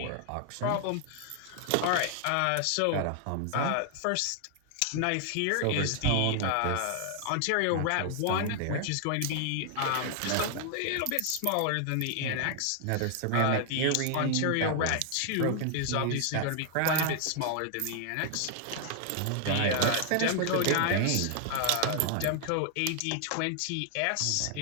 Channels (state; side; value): different; both; correlation 0.00